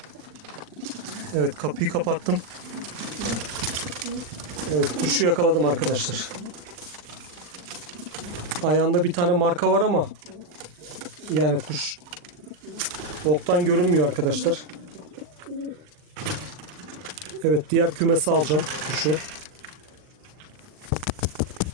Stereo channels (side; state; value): left; late; 40 ms